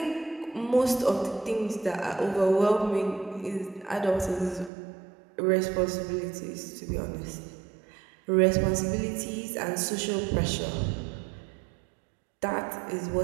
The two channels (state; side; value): drops out; left; at 4.7 s